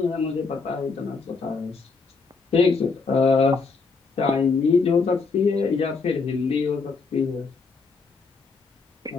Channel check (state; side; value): quieter; right; 4.5 dB